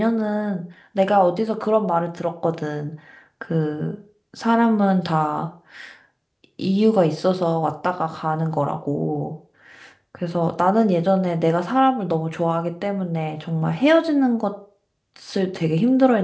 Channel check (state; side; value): identical; both; correlation 1.00